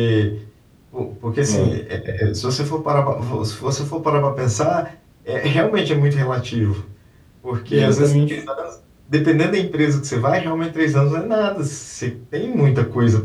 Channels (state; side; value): identical; both; correlation 1.00